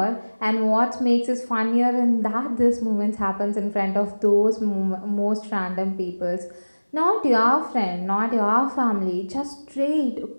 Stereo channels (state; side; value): inverted; both; correlation -1.00